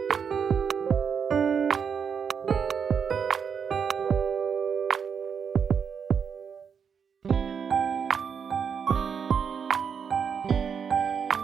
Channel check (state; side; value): quieter; left; 6.9 dB